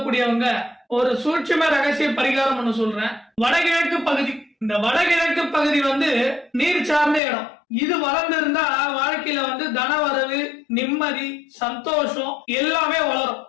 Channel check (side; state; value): right; drops out; at 7.2 s